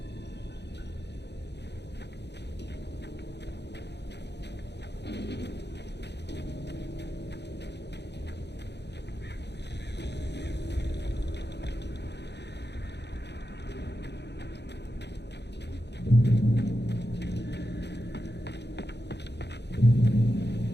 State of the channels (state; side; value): late; right; 0.50 ms